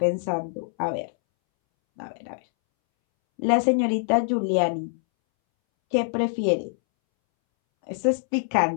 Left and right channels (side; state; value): right; silent; 62 dB below the other